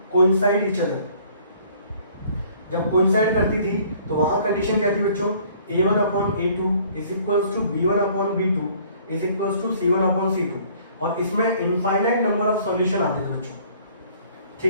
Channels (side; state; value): both; inverted; correlation -0.57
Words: कोइंसाइड ईच अदर। जब कोइंसाइड करती थी तो वहां कंडीशन क्या थी बच्चों, a1/a2 is equals to b1/b2 is equals to c1/c2। और इसमें इनफाइनाइट नंबर ऑफ सॉल्यूशन आते थे बच्चों,